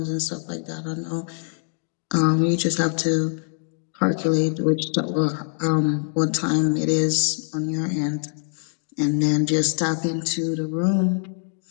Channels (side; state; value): right; silent; digital silence